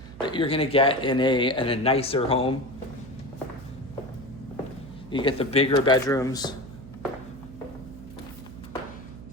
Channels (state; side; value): noise; right; hum, 16 dB below the sound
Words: that you're gonna get in a nicer home. You get the bigger bedrooms,